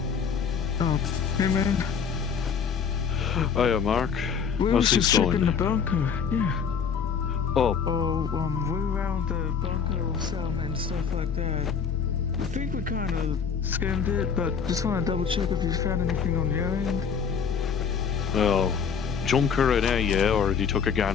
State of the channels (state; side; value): quieter; right; 6.6 dB